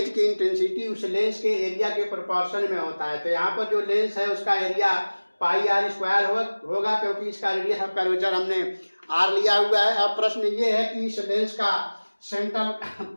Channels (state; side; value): inverted; both; correlation -1.00